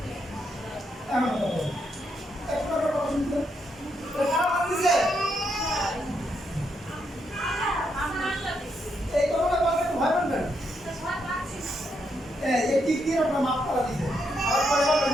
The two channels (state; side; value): normal; both; correlation 0.79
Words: এমন কথা বলো। একটা কথা শুনতে। কারা বান্ধিছে? এই কথাটা বলতে ভয় পাবেন? এই টিক দিয়ে আপনার মাপ করা দিছে। আর পরে বলবেন